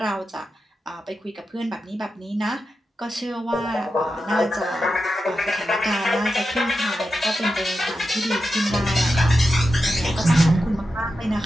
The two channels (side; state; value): both; normal; correlation 0.90